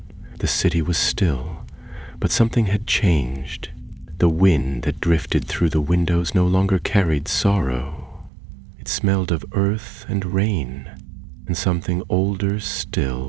The city was still, but something had changed. The wind that drifted through the windows no longer carried sorrow. It smelled of earth and rain, and something older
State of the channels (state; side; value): drops out; left; at 8.3 s